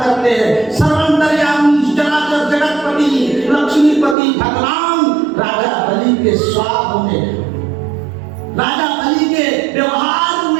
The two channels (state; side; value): drops out; left; at 4.2 s